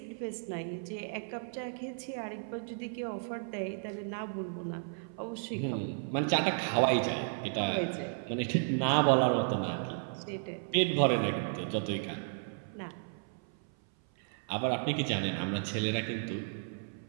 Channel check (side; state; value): left; silent; 55 dB below the other